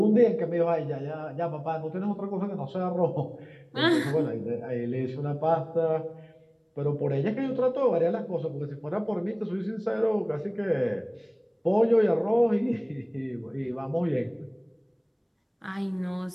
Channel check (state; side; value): identical; both; correlation 1.00